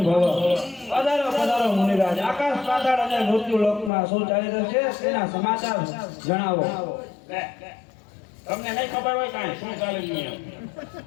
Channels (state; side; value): drops out; right; at 3.9 s